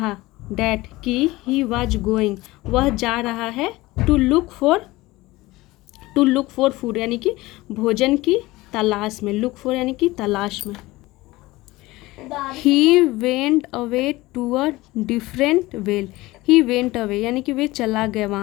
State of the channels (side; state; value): right; quieter; 19.6 dB